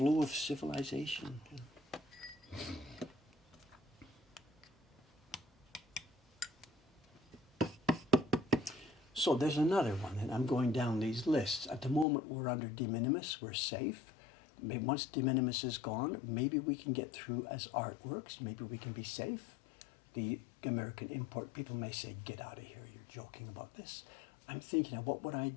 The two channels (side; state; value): right; drops out; at 12.1 s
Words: of civilization. So there's another one, and I'm going down these lists. At the moment, we're under de minimis, we're safe. Maybe once de minimis is gone, maybe we can get through as artworks, maybe we can be safe. The American import people may say, get out of here, you're joking about this. I'm thinking of what would I